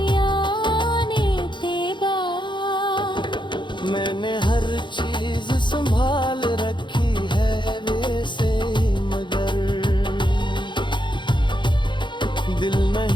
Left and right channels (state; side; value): late; right; 0.23 ms